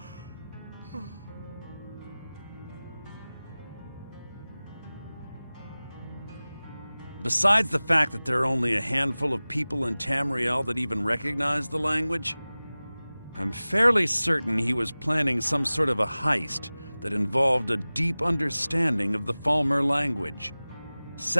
Besides the fact that there are only a handful of people in Tamriel that even recognize the language, I'm fairly certain he was planning some sort of a heist that involved a deep understanding of the Falmer language.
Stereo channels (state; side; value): inverted; both; correlation -0.98